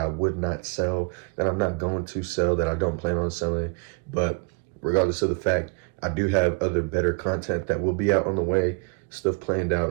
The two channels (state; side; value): quieter; left; 32.6 dB